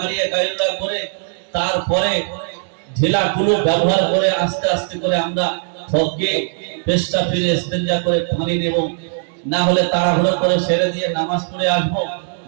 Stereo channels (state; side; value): silent; left; digital silence